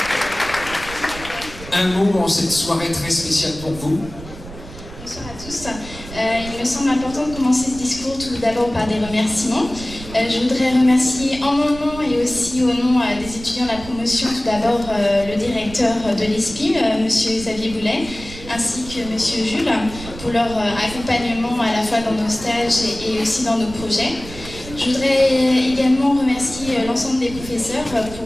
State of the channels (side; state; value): right; noise; rumble, 14 dB below the sound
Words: un mot en cette soirée très spéciale pour vous. Bonsoir à tous. Il me semble important de commencer ce discours tout d'abord par des remerciements. Je voudrais remercier en mon nom et aussi au nom des étudiants de la promotion, tout d'abord le directeur de l'ESPIM, M. Xavier Boulet, ainsi que M. Jules, pour leur accompagnement à la fois dans nos stages et aussi dans nos projets. Je voudrais également remercier l'ensemble des professeurs